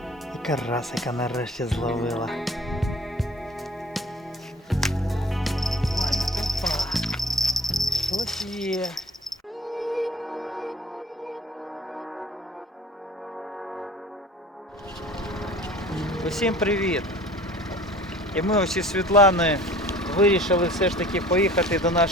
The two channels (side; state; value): both; normal; correlation 0.46